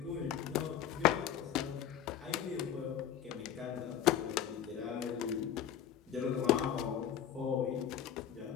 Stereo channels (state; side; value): quieter; right; 9.9 dB